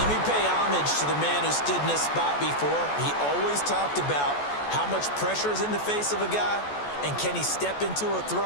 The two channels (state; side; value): late; right; 14 ms